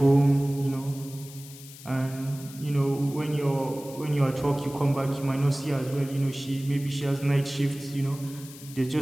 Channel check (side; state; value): left; noise; hiss, 17 dB below the sound